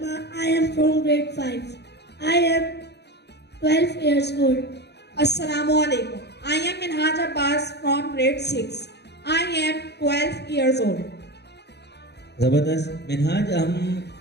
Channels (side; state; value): right; late; 0.49 ms